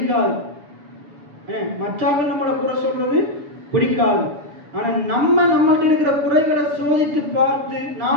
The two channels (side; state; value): left; late; 6.8 ms